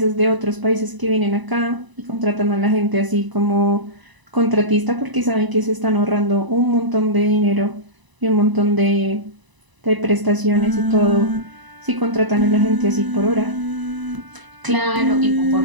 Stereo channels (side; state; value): left; late; 1.0 ms